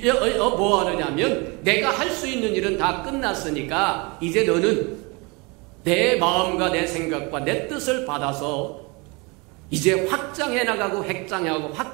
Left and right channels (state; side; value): quieter; left; 28.3 dB